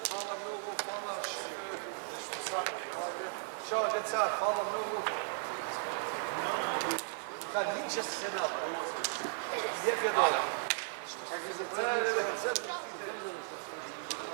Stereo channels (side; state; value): left; silent; 54 dB below the other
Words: Hvala mnogo, hvala. Ćao deca, hvala mnogo. Kad niče se na lijep je dole.